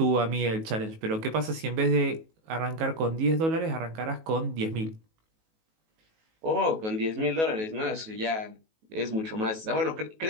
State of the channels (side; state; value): left; late; 19 ms